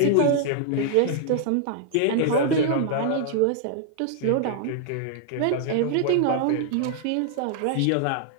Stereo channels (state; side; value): different; both; correlation 0.00